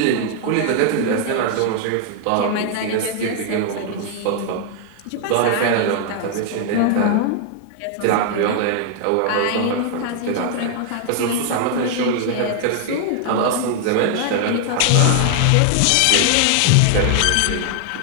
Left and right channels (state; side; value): different; both; correlation 0.00